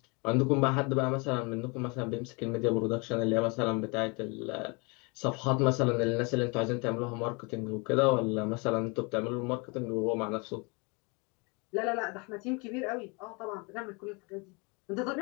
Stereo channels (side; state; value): right; quieter; 30.3 dB